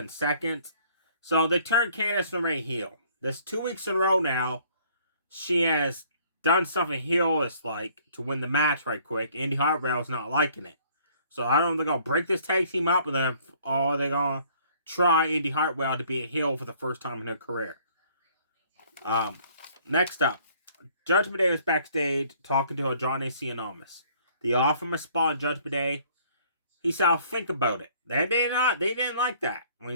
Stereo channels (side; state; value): both; inverted; correlation -0.59